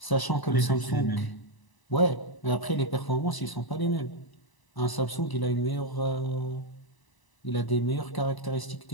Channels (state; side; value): late; right; 1.0 ms